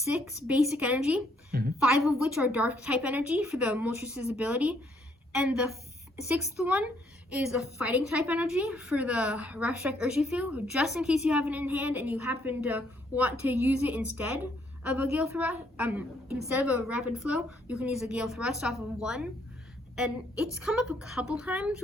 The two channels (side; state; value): both; normal; correlation 0.69